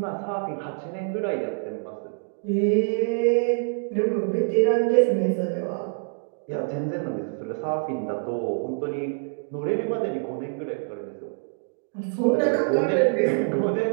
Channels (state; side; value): silent; left; 61 dB below the other